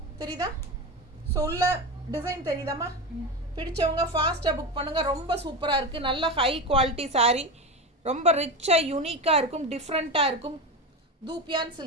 தெரியுதா? ஸோ உள்ள டிசைன் தெரியுதாம்மா? பிடிச்சவங்க ஃபாஸ்ட்டாக புக் பண்ணுங்கள். ரொம்ப சூப்பராக இருக்குது, நல்ல ஹை குவாலிட்டி சாரீ, ரொம்ப ரிச்சாக யூனிக்காக இருக்கும், டிஃப்ரெண்ட்டாக இருக்கும். தூப்பியான்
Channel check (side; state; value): both; normal; correlation 0.20